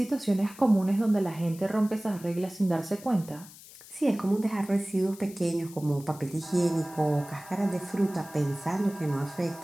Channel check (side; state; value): left; noise; hiss, 19 dB below the sound